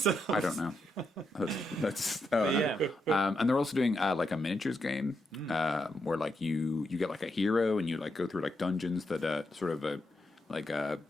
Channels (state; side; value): normal; both; correlation 0.82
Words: I don't know. That's Yeah. and they're also doing like a miniatures game where like you get like a hero and you like go through like dungeons that sort of a